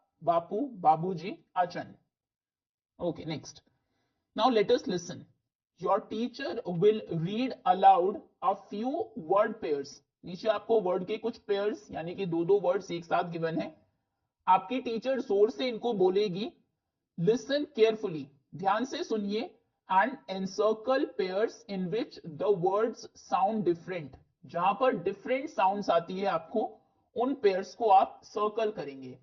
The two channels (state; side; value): identical; both; correlation 1.00